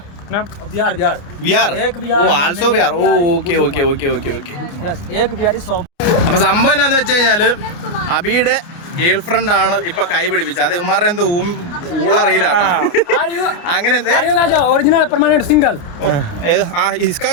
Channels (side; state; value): right; late; 29 ms